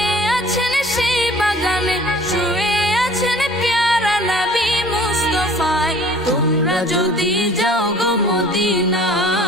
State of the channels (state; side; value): normal; both; correlation 0.50